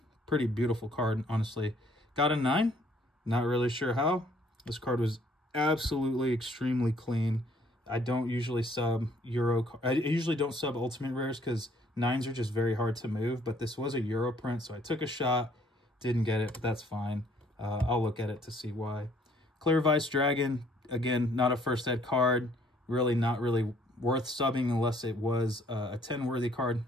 Pretty beautiful card, honestly. Got a 9. Not really sure how. This card was absolutely extremely clean. I don't usually sub Euro. I usually don't sub Ultimate Rares because 9s are just very hard to move. But this was a Euro print, so I took a shot. Didn't get it, but that's fine. I'll look at it to see why. Clear Vice Dragon, again, not a first ed card. Really not really worth subbing unless it was a 10-worthy card,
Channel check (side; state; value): both; normal; correlation 0.62